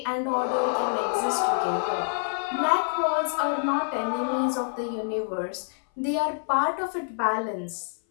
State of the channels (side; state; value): right; silent; 58 dB below the other